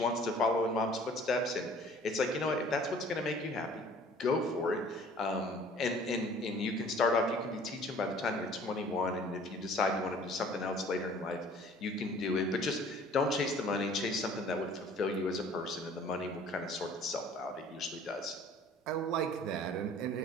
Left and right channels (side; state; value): both; normal; correlation 0.51